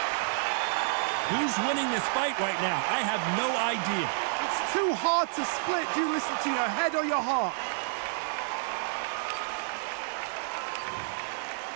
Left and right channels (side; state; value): left; silent; digital silence